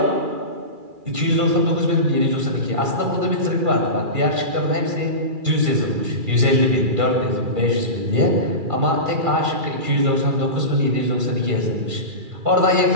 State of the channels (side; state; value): left; late; 2.4 ms